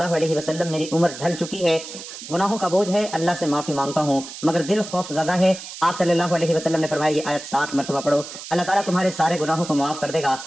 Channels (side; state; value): right; noise; hiss, 12 dB below the sound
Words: علیہ وسلم، میری عمر ڈھل چکی ہے، گناہوں کا بوجھ ہے، اللہ سے معافی مانگتا ہوں مگر دل خوف زدہ ہے۔ آپ صلی اللہ علیہ وسلم نے فرمایا یہ آیت 7 مرتبہ پڑھو، اللہ تعالیٰ تمہارے سارے گناہوں کو معاف کر دے گا،